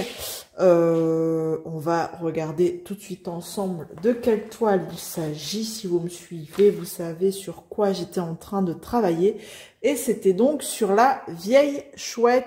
On va regarder tout de suite ensemble de quelle toile il s'agit. Si vous me suivez, vous savez sur quoi j'étais en train de travailler. Et c'était donc sur la vieille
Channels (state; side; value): identical; both; correlation 1.00